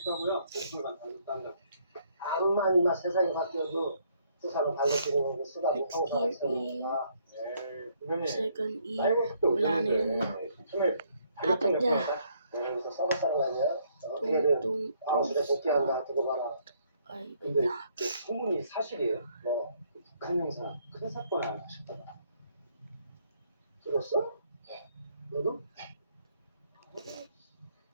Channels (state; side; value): inverted; both; correlation -0.69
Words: 목표만 당겼단다. 암만 이마 세상이 바뀌어도 세상은 달라지는 거고 쓰다고 항상 있으니까. 네, 선생님. Second ear. 사이버 속도 Wala na yun. 처음에 Apat niya. 여기서 서버 사람 아니야? 어떻게든 Tung. 아웃에 복귀한다 두고 봐라. Ay, 근데 그 소문이 사실이에요. 뭐 북한 형사 큰 사건 하나 하셨다가. 들었어? 너도?